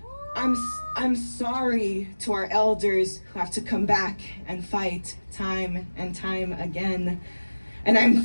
I'm sorry to our elders who have to come back and fight time and time again. And I'm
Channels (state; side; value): inverted; both; correlation -1.00